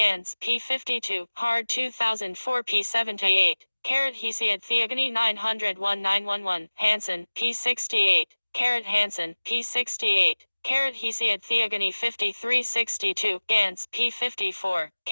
P52, Hard 2004 P78. Hesiod Theogony 901 911, Hansen, P68. Hansen, P68. Hesiod Theogony 5362, Gans, P54.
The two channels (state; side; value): inverted; both; correlation -1.00